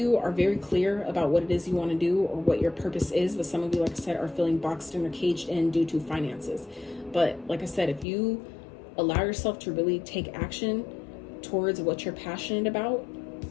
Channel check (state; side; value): drops out; right; at 8.1 s